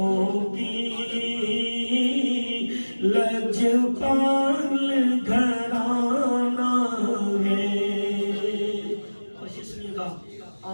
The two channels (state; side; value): inverted; both; correlation -1.00